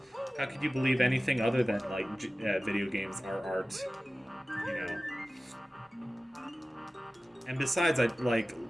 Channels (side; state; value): both; normal; correlation 0.96